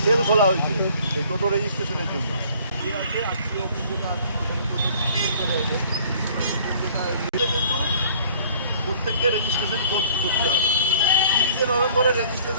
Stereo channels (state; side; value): inverted; both; correlation -0.54